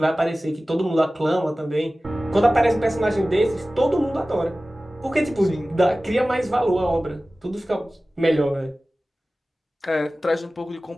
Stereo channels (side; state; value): both; normal; correlation 0.97